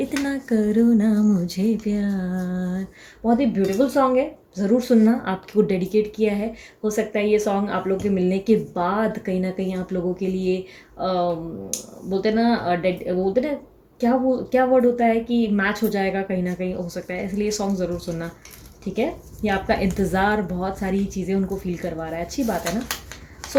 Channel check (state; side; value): identical; both; correlation 1.00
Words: करो ना मुझे प्यार। बहुत ही ब्यूटीफुल सॉन्ग है, ज़रूर सुनना, आपको डेडिकेट किया है। हो सकता है ये सॉन्ग आप लोगों के मिलने के बाद कहीं ना कहीं आप लोगों के लिए बोलते ना क्या वर्ड होता है कि मैच हो जाएगा, कहीं ना कहीं हो सकता है। इसलिए सॉन्ग ज़रूर सुनना, ठीक है। ये आपका इंतज़ार बहुत सारी चीज़ें उनको फील करवा रहा है, अच्छी बात है ना।